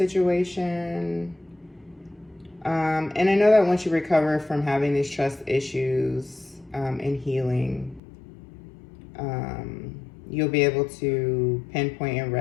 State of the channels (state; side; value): drops out; right; at 8.0 s